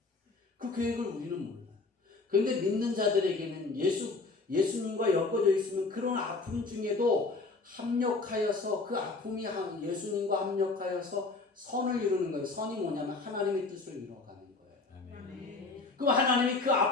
그 계획을 우리는 몰라요. 그런데 믿는 자들에게는 예수님과 엮어져 있으면 그런 아픔 중에도 합력하여서 그 아픔이 예수님과 합력하여서 선을 이루는 거예요. 선이 뭐냐면 하나님의 뜻을 이루어가는 거예요. 아멘. 그럼 하나님이 그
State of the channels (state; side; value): quieter; right; 3.8 dB